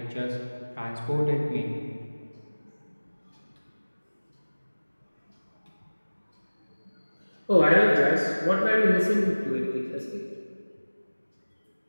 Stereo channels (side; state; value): both; inverted; correlation -1.00